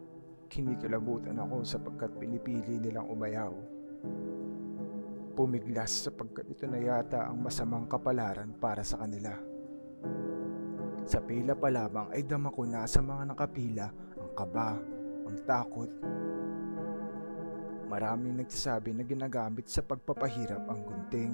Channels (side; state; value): both; inverted; correlation -1.00